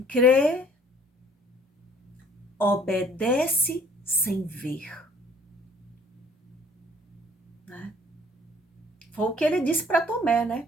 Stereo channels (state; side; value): normal; both; correlation 0.56